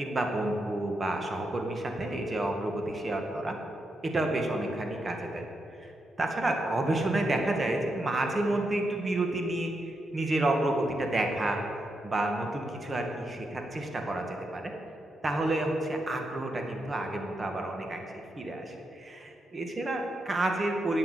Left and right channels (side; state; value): both; normal; correlation 0.84